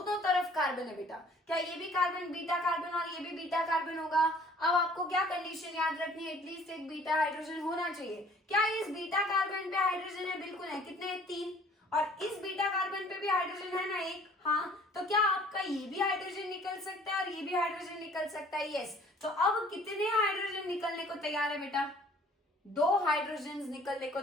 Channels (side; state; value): both; normal; correlation 0.54